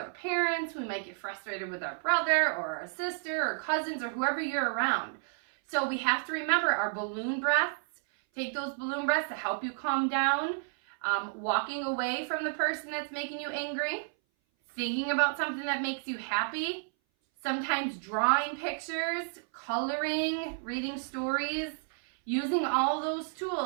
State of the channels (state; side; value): silent; left; 57 dB below the other